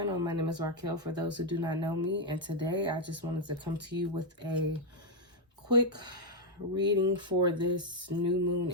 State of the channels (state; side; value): normal; both; correlation -0.01